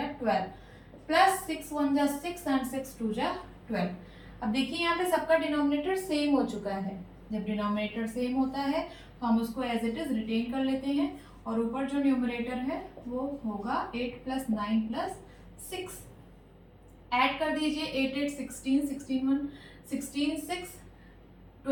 12, प्लस 6 1 जा 6 and 6 2 जा 12। अब देखिए यहाँ पे सबका डिनोमिनेटर सेम हो चुका है, जब डिनोमिनेटर सेम होता है तो हम उसको एज इट इज रिटेन कर लेते हैं और ऊपर जो न्यूमरेटर है वो होगा 8 प्लस 9 प्लस 6। ऐड कर दीजिए 8 8 16 16 1 16 6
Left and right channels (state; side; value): identical; both; correlation 1.00